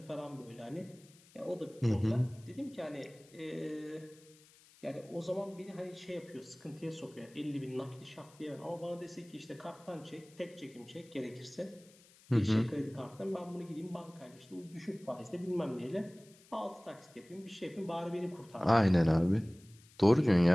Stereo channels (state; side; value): noise; left; hiss, 26 dB below the sound